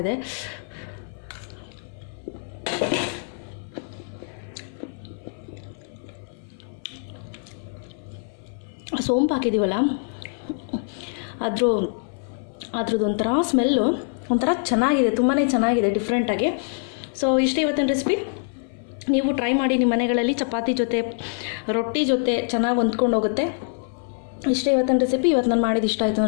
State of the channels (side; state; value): right; silent; 58 dB below the other